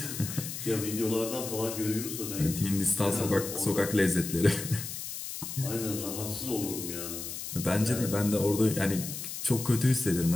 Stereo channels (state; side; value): noise; left; hiss, 7 dB below the sound